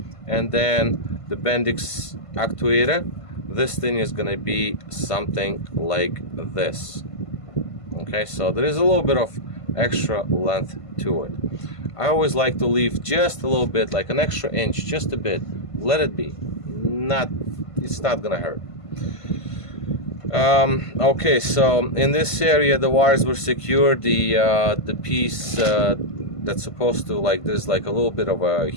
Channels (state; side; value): late; right; 1.5 ms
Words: and then the Bendix actuator. This thing is going to be something like this. Okay, so there is a little bit of extra length to it. I always like to leave just a little bit, like an extra inch, just a bit. Let it be. It's not gonna hurt. Okay, so in this area the wires were secured. The piece that's supposed to, like, there's like a little bit of a